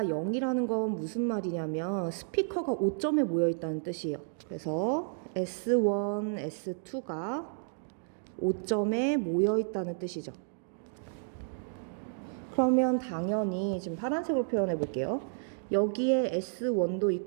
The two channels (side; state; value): left; silent; digital silence